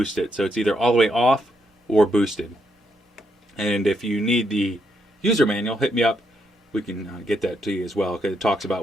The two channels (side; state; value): both; normal; correlation 0.78